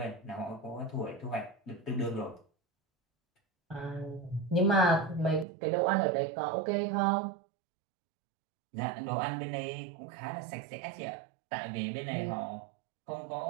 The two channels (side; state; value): left; drops out; at 5.5 s